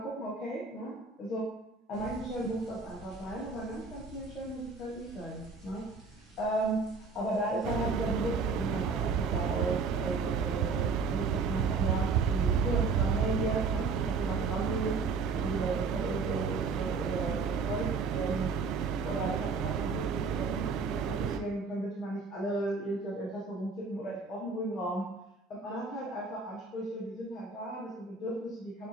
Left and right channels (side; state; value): left; quieter; 4.4 dB